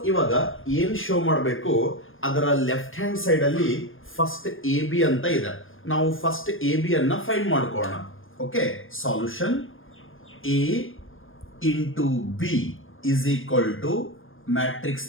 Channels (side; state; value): right; late; 0.59 ms